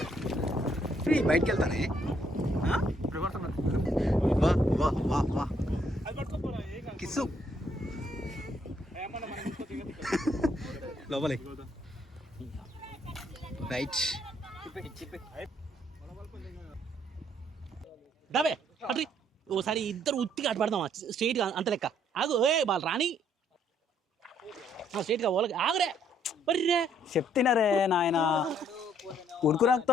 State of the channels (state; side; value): normal; both; correlation 0.68